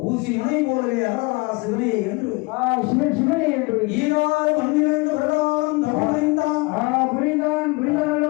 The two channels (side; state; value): right; quieter; 26.6 dB